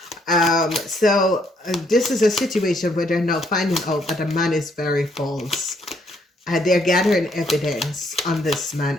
so this is a situation where they're now finding out that a man is very false. They're gathering evidence on this man.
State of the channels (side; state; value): both; normal; correlation 0.69